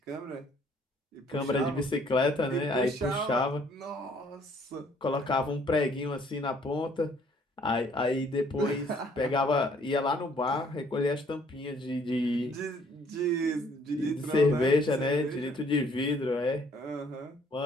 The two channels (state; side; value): normal; both; correlation 0.62